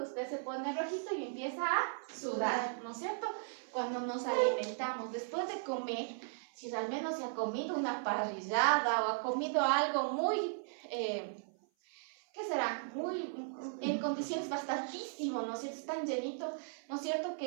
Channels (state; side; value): silent; left; 53 dB below the other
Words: usted se pone rojito y empieza a sudar, ¿no es cierto? Cuando nos alimentamos, después de comer, si al menos se ha comido una parrillada o ha comido algo muy, ¿qué será? Muy, en condiciones bastantísimo, ¿no es cierto? Tan llenito, ¿no es cierto?